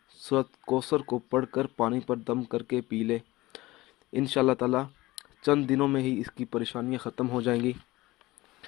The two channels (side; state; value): right; quieter; 19.3 dB